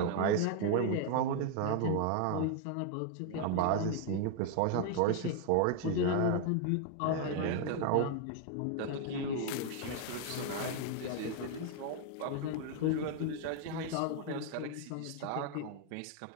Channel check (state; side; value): different; both; correlation 0.00